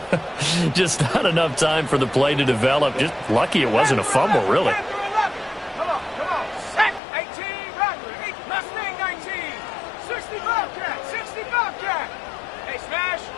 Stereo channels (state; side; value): drops out; right; at 7.0 s